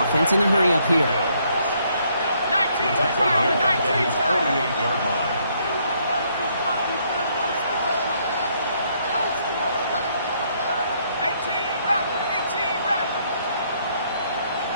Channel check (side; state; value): both; inverted; correlation -0.70